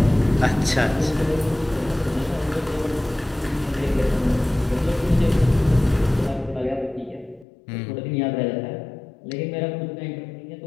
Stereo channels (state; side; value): drops out; right; at 7.5 s